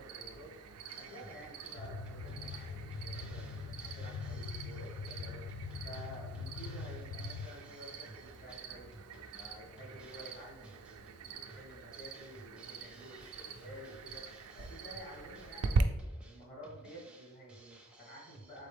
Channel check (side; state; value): both; normal; correlation 0.64